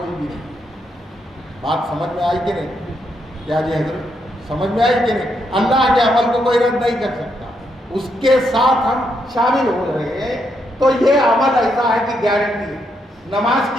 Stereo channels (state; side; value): normal; both; correlation 0.78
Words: بھی نہیں۔ بات سمجھ میں آئی کہ نہیں؟ کیا جی حضرت سمجھ میں آئی کہ نہیں؟ اللہ کے عمل کو کوئی رد نہیں کر سکتا، اس کے ساتھ ہم شامل ہو رہے ہیں۔ تو یہ عمل ایسا ہے کہ گارنٹی ہے، نماز